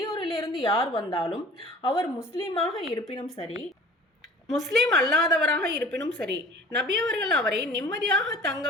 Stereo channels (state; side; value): normal; both; correlation 0.46